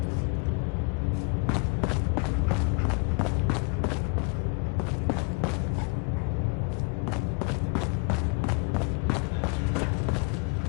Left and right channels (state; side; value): quieter; right; 33.6 dB